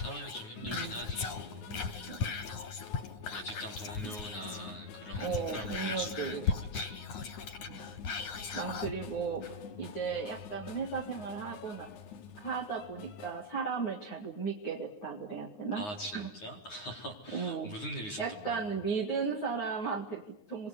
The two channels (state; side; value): late; right; 9.6 ms